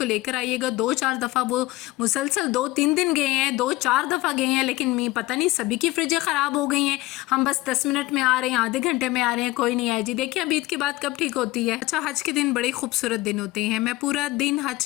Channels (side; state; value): right; quieter; 18.9 dB